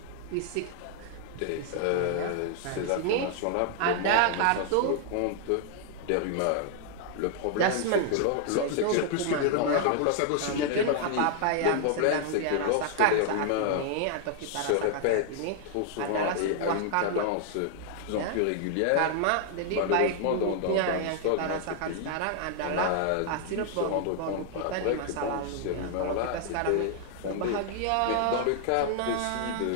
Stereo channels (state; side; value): different; both; correlation -0.01